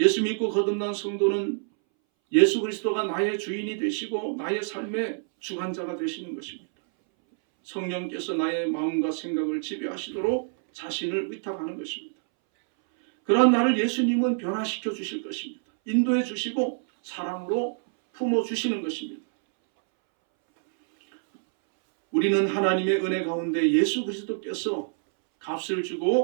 믿고 거듭난 성도는 예수 그리스도가 나의 주인이 되시고 나의 삶의 주관자가 되시는 것입니다. 성령께서 나의 마음과 생각을 지배하시도록 자신을 의탁하는 것입니다. 그러한 나를 예수님은 변화시켜 주실 것입니다. 인도해 주시고 사랑으로 품어 주시는 것입니다. 우리는 하나님의 은혜 가운데 예수 그리스도께서 값을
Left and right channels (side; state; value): left; silent; 61 dB below the other